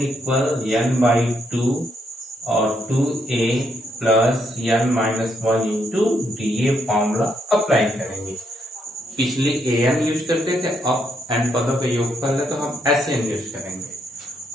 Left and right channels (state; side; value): normal; both; correlation 0.75